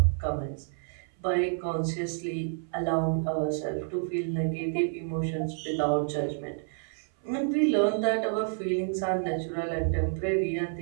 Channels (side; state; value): left; silent; 58 dB below the other